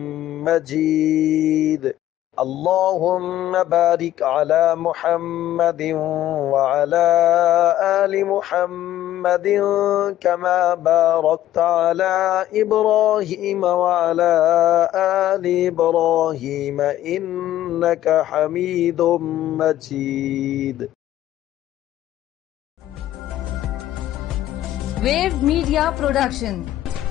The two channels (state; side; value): quieter; right; 13.3 dB